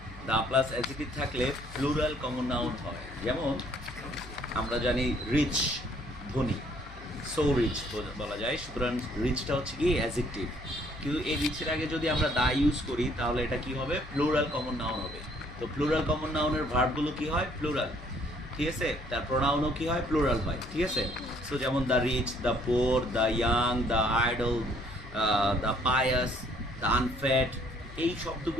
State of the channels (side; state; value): left; noise; hum, 17 dB below the sound